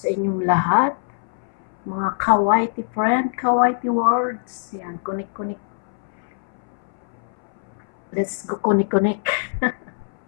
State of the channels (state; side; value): silent; right; 60 dB below the other